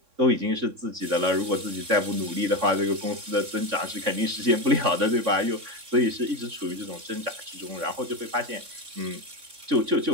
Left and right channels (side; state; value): left; late; 3.6 ms